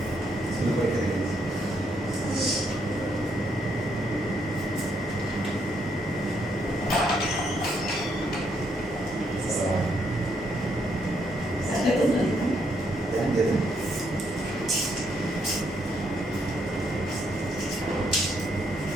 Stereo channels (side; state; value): both; normal; correlation 0.74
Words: স্কুলে পরীক্ষা আছে